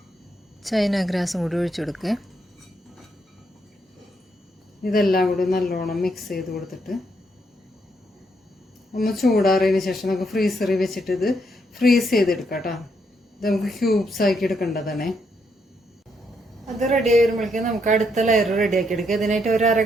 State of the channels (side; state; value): both; normal; correlation 0.76